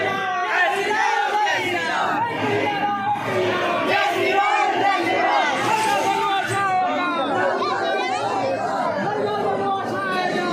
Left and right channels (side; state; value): both; identical; correlation 1.00